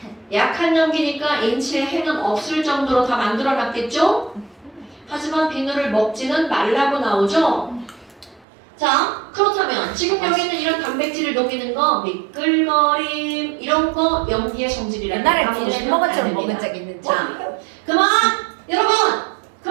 약한 염기니까 인체에 해는 없을 정도로 다 만들어놨겠죠? 하지만 비누를 먹지는 말라고 나오죠? 자, 그렇다면 지금 여기 있는 이런 단백질을 녹이는 거, 미끌거림 이런 거 염기의 성질이라고 옛날에 비누 햄버거처럼 먹은 적 있는지. 자, 그만! 여러분!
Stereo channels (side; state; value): left; drops out; at 8.5 s